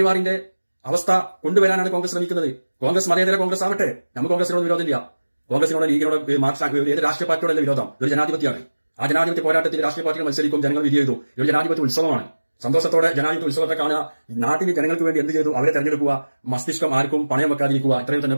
അവസ്ഥ കൊണ്ടുവരാനാണ് കോൺഗ്രസ് ശ്രമിക്കുന്നത്. കോൺഗ്രസ് മതേതര കോൺഗ്രസ് ആവട്ടെ, നമുക്ക് കോൺഗ്രസിനോട് വിരോധമില്ല. കോൺഗ്രസിനോട് ലീഗിനോട് ഏത് രാഷ്ട്രീയ പാർട്ടിയോടല്ല വിരോധം. ഇതൊരു ജനാധിപത്യമാണ്. ആ ജനാധിപത്യ പോരാട്ടത്തിൽ രാഷ്ട്രീയ പാർട്ടികൾ മത്സരിക്കും, ജനങ്ങൾ വിധി ചെയ്തു. ഇതൊരു ജനാധിപത്യ ഉത്സവമാണ്. സന്തോഷത്തോടെ ജനാധിപത്യ ഉത്സവത്തെ കാണുക. നാട്ടിൽ ജനങ്ങൾക്ക് വേണ്ടി എന്ത് ചെയ്തു അവരെ തെരഞ്ഞെടുക്കുക. മസ്തിഷ്കം ആർക്കും പണയം വെക്കാതിരിക്കുക. ഇത്രയും തന്നെ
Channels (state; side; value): inverted; both; correlation -1.00